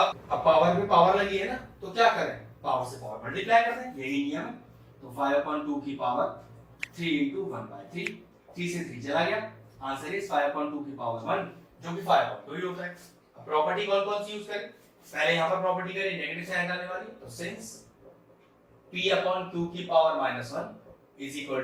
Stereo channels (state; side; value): identical; both; correlation 1.00